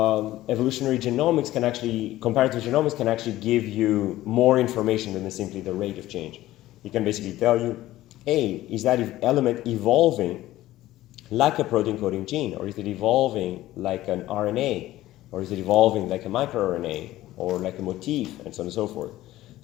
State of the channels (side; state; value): right; quieter; 15.5 dB